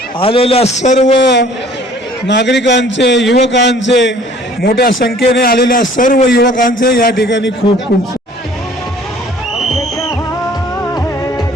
आलेल्या सर्व नागरिकांचे, युवकांचे, मोठ्या संख्येने आलेल्या सर्व युवकांचे या ठिकाणी खूप खूप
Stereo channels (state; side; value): normal; both; correlation 0.54